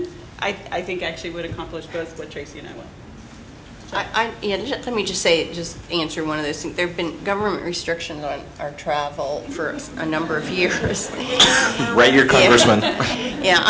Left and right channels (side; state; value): both; identical; correlation 1.00